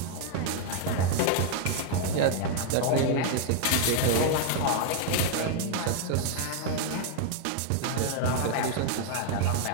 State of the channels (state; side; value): different; both; correlation 0.00